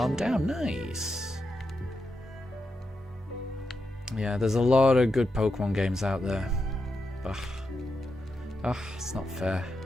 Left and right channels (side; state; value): both; normal; correlation 0.86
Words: down. Nice. Yeah, there's a lot of good Pokemon games out there. Ugh, it's not fair.